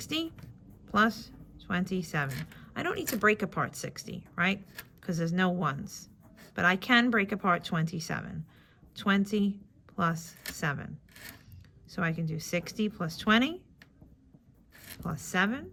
plus 27. I don't need to break apart 60, right? Because there's no ones. But I can break apart 27. 20 plus 7. So I can do 60 plus 20 plus 7.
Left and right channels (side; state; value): both; identical; correlation 1.00